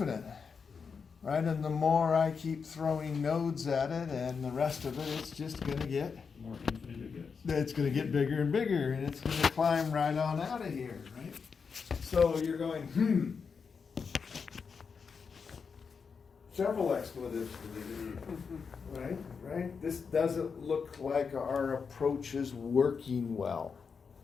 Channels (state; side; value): quieter; right; 5.7 dB